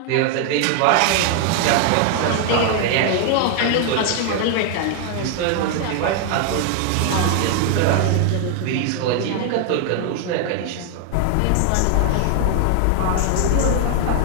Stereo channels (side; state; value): both; different; correlation 0.00